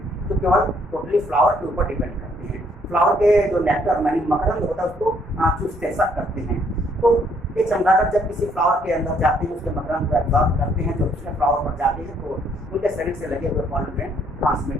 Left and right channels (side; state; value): both; normal; correlation 0.67